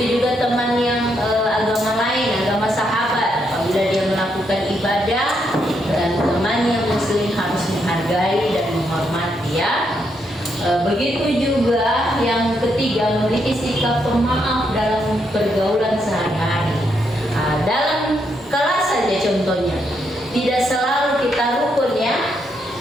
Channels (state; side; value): normal; both; correlation 0.78